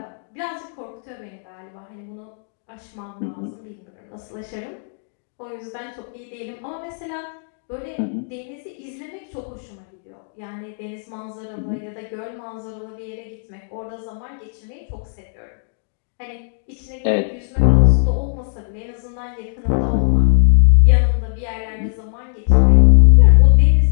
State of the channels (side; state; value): right; silent; digital silence